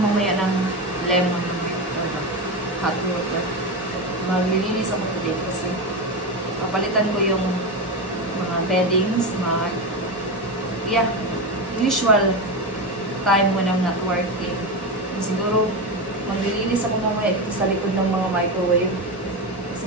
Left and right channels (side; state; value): both; normal; correlation 0.16